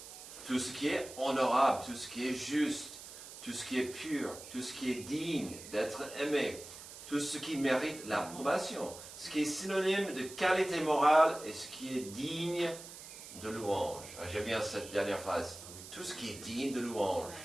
Tout ce qui est honorable, tout ce qui est juste, tout ce qui est pur, tout ce qui est digne d'être aimé, tout ce qui mérite l'approbation, ce qui est synonyme de qualité morale et ce qui est digne de louange. J'aime bien cette dernière phrase. Tout ce qui est digne de louange.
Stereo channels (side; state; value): right; noise; hiss, 14 dB below the sound